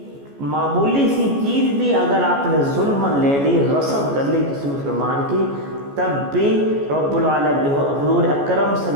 معمولی سی چیز بھی اگر آپ نے ظلم لے لی، غصب کر لی کسی مسلمان کی، تب بھی رب العالمین حضور اکرم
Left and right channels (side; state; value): left; late; 14 ms